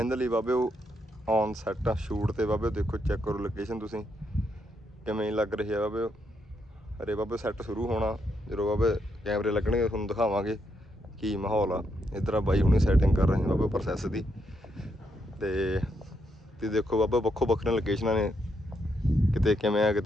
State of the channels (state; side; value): normal; both; correlation 0.79